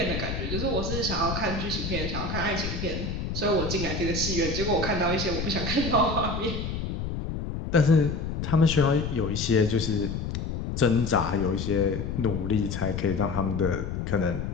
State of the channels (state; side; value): noise; left; rumble, 4 dB below the sound